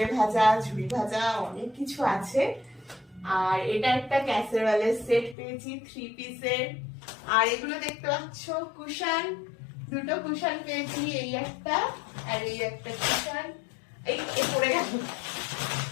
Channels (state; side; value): drops out; right; at 5.4 s